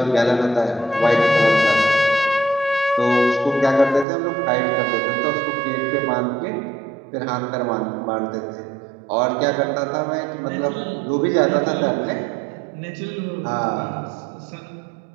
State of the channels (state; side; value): drops out; left; at 4.0 s